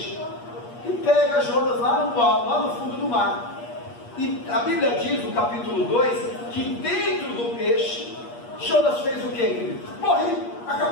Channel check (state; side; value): late; right; 8.4 ms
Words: e pega Jonas lá no fundo do mar. E a Bíblia diz no capítulo 2 que dentro do peixe Jonas fez o que, querido? Morri,